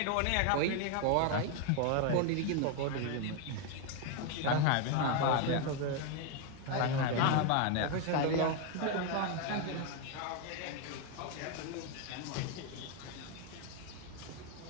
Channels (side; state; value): both; different; correlation 0.01